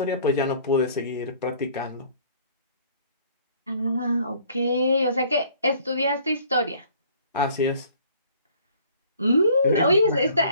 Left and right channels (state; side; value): inverted; both; correlation -0.56